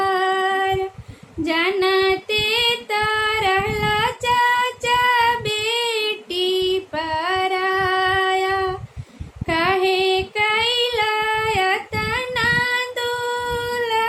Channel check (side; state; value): both; identical; correlation 1.00